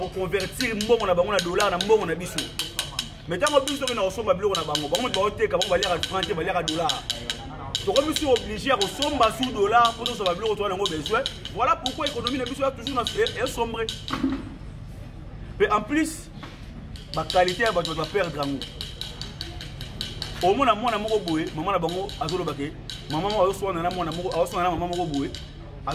convertir mbongo na dollar na mbongo na bisou. Mais tant que bisou na osomba biloko na bango, on va teka, on va lire à franc, on va lire à dollar. Donc, je suis obligé à ressembler sous dollar pour nous savoir besoin. Voilà pourquoi l'économie est toujours sombre. Mais en plus, la qualité va perdre. Au moins, maman a bango azolo bake. Maman a reçu un maman a boué.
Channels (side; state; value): both; identical; correlation 1.00